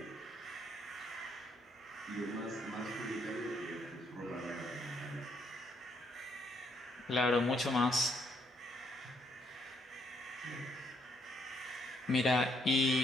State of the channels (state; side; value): normal; both; correlation 0.71